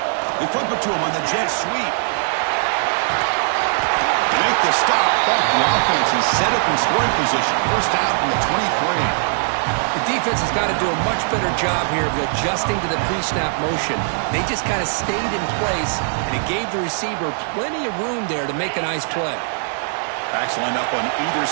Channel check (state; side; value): silent; left; 66 dB below the other